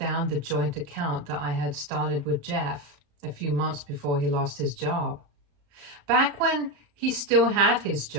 the joint account that I had started with Jeff a few months before he lost his job. Back when he still had his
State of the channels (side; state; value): left; late; 34 ms